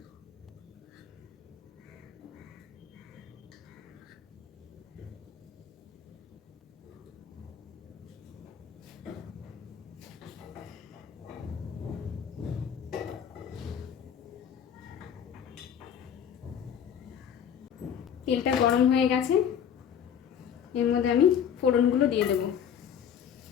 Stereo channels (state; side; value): quieter; right; 8.4 dB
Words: তেলটা গরম হয়ে গেছে, এর মধ্যে আমি ফোড়নগুলো দিয়ে দেবো।